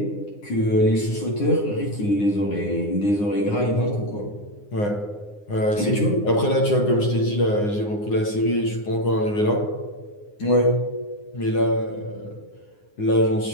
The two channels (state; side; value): late; right; 9.7 ms